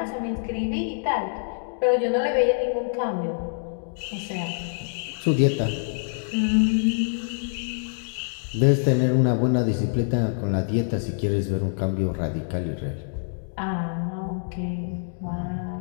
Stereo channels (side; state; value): right; silent; digital silence